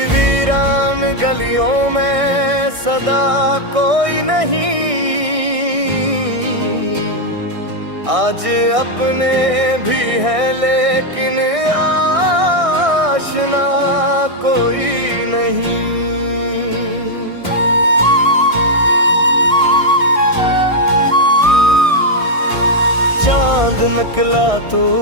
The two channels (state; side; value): late; left; 1.6 ms